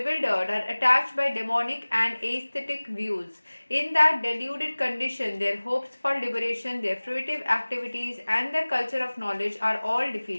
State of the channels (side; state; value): both; inverted; correlation -1.00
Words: are attached by demonic and aesthetic views. In that deluded condition, their hopes for liberation, their fruitive activities, and their culture of knowledge are all